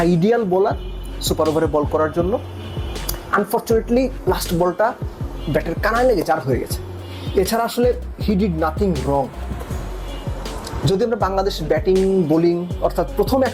ideal bowler super ওভারে বল করার জন্য। আনফর্চুনেটলি লাস্ট বলটা ব্যাটের কানায় লেগে 4 হয়ে গেছে। এছাড়া আসলে হি ডিড নাথিং রং। যদি আমরা বাংলাদেশ ব্যাটিং বোলিং অর্থাৎ প্রথম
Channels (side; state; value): both; identical; correlation 1.00